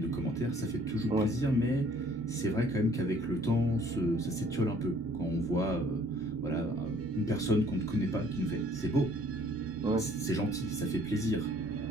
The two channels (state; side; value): normal; both; correlation 0.58